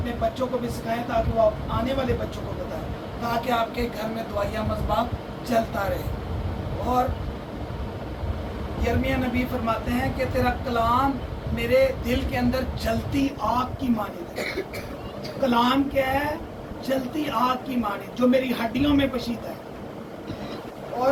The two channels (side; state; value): both; identical; correlation 1.00